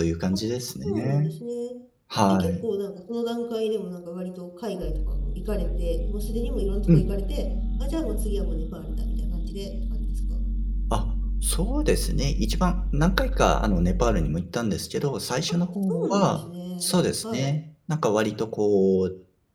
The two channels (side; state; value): both; identical; correlation 1.00